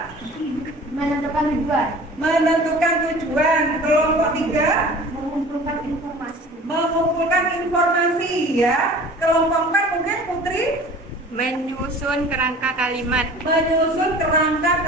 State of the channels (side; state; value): both; normal; correlation 0.44